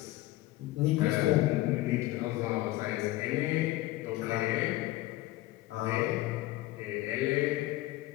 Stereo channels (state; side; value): quieter; right; 17.5 dB